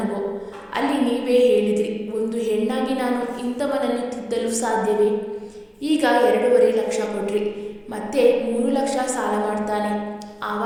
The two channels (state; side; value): identical; both; correlation 1.00